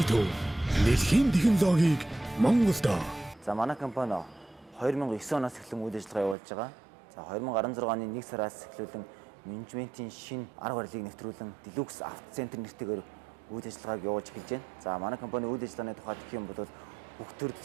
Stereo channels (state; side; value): drops out; left; at 6.4 s